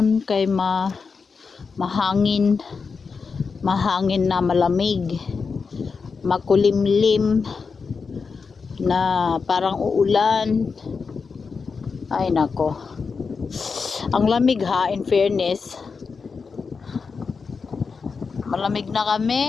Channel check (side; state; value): right; quieter; 5.1 dB